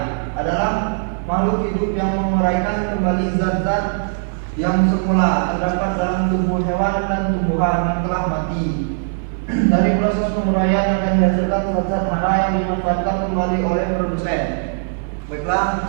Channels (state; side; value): silent; left; 58 dB below the other